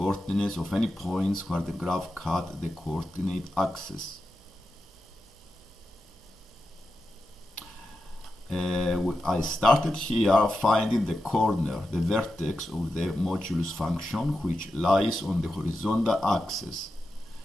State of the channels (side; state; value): both; normal; correlation 0.90